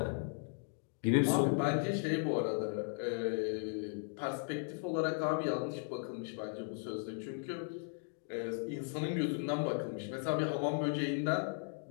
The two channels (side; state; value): right; silent; 53 dB below the other